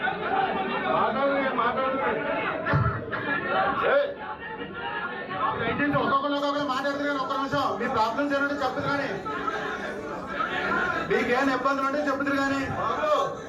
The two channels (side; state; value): both; identical; correlation 1.00